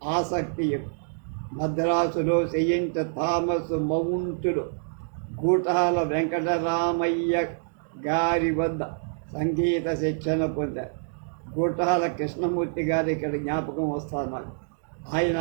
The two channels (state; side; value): silent; left; digital silence